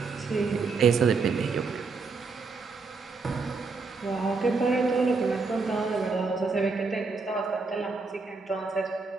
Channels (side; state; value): left; quieter; 4.4 dB